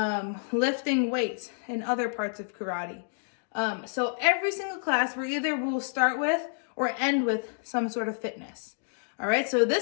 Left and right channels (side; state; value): right; silent; digital silence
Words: lifting weights, and other parts of karate. So every single class, we either will start with or end with some sort of fitness. All right, so